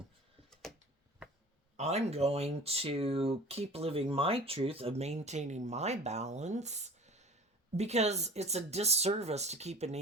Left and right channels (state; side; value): normal; both; correlation 0.42